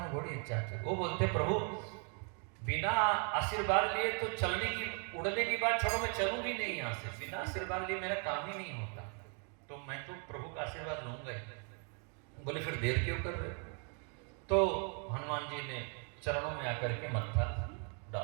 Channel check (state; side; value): quieter; left; 36.9 dB